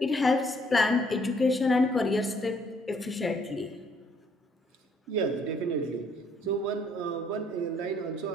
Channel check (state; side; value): normal; both; correlation 0.65